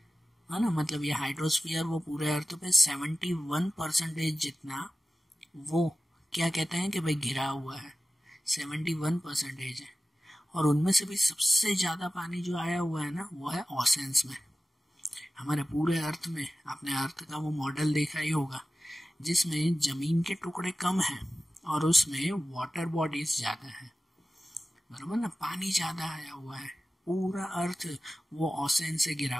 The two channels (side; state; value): both; normal; correlation 0.95